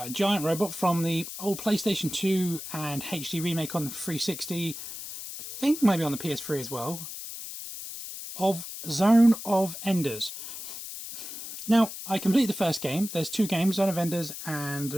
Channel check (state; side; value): noise; left; hiss, 9 dB below the sound